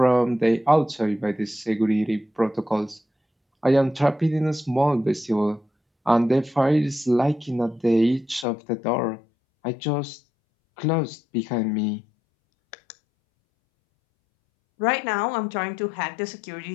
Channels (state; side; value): drops out; right; at 8.5 s